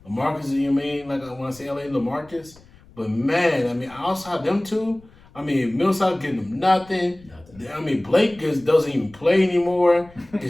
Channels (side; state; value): left; noise; rumble, 25 dB below the sound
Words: LaMarcus, you mean, like when I say LA, LaMarcus. But man, I mean, outside them two, I mean, Millsap getting them nothing. I mean, Blake just doesn't even play anymore.